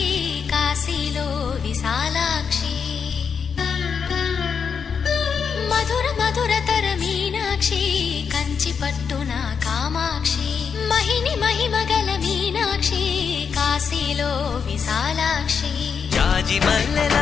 కాశీలో విశాలాక్షి మధుర మధురతర మీనాక్షి కంచి పట్టున కామాక్షి మహిని మహిమగల మీనాక్షి కాశీలో విశాలాక్షి జాజి మల్లెల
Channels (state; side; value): quieter; right; 6.4 dB